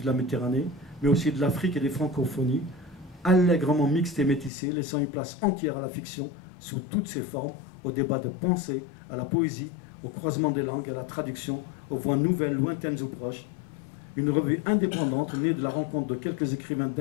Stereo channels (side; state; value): right; drops out; at 4.5 s